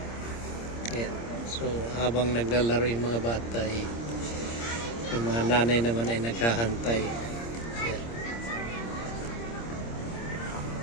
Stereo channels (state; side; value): late; right; 26 ms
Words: Ayan. So, habang naglalaro yung mga bata, yung mga nanay naman ay naghahantay. Ayan.